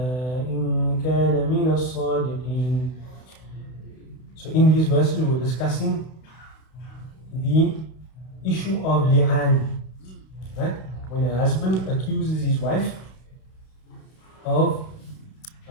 إن كان من الصادقين. So in these verses we were discussing the issue of li'an, right? When a husband accuses his wife of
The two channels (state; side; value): late; right; 32 ms